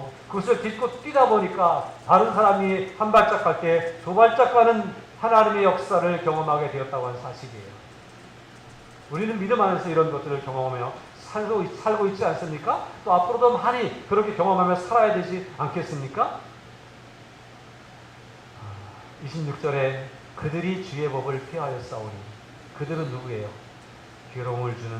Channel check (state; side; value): identical; both; correlation 1.00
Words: 그것을 딛고 뛰다 보니까 다른 사람이 한 발짝 갈 때 두 발짝 가는 하나님의 역사를 경험하게 되었다고 하는 사실이에요. 우리는 믿음 안에서 이런 것들을 경험하며 살고 있지 않습니까? 또 앞으로도 많이 그렇게 경험하며 살아야 되지 않겠습니까? 26절에 그들이 주의 법을 폐하였사오니 그들은 누구예요? 괴로움을 주는